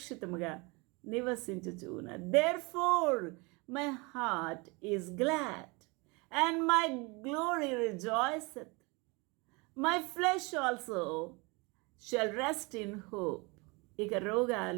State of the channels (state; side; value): quieter; left; 27.7 dB